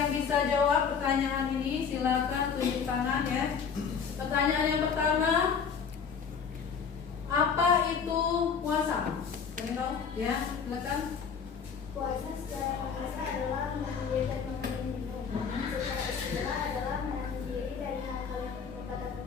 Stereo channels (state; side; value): quieter; right; 6.4 dB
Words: bisa jawab pertanyaan ini? Silakan tunjuk tangan ya. Pertanyaan yang pertama, apa itu puasa? Kalian tahu? Ya, silakan. Puasa secara bahasa adalah menahan diri dari makan dan minum. Secara istilah adalah menahan diri dari hal-hal yang merupakan